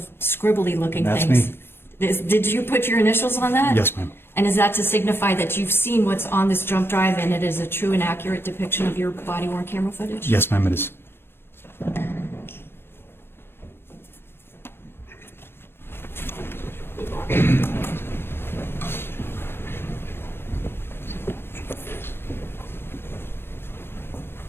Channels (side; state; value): right; late; 0.11 ms